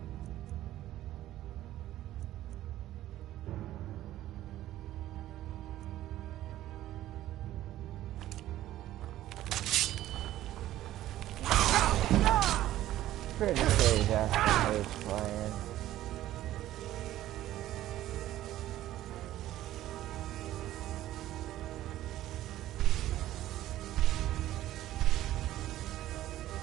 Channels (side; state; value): left; quieter; 13.9 dB